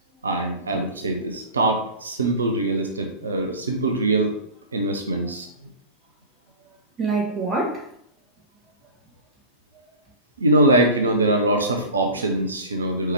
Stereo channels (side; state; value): both; inverted; correlation -0.36